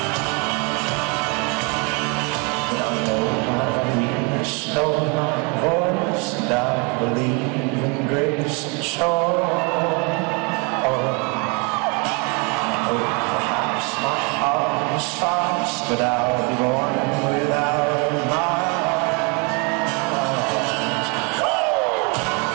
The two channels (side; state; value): left; quieter; 32.2 dB